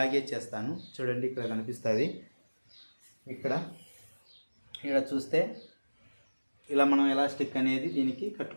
చేస్తాను చూడండి. ఇక్కడ కనిపిస్తుంది, ఇక్కడ చూస్తే ఇలా మనం ఎలాస్టిక్ అనేది దీనికి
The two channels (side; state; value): both; inverted; correlation -1.00